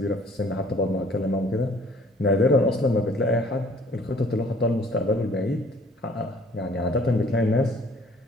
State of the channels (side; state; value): both; normal; correlation 0.56